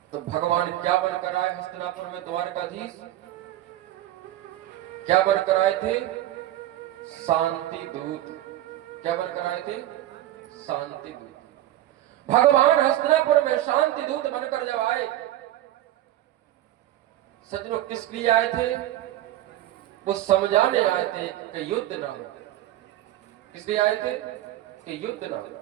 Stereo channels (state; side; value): quieter; left; 14.0 dB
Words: तो भगवान क्या बनकर आए हस्तिनापुर में? द्वारकाधीश। क्या बनकर आए थे? शांति दूत। क्या बनकर आए थे? शांति दूत। भगवान हस्तिनापुर में शांति दूत बनकर जब आए, सज्जनों किस लिए आए थे? वो समझाने आए थे कि युद्ध ना हो। किस लिए आए थे? कि युद्ध ना हो।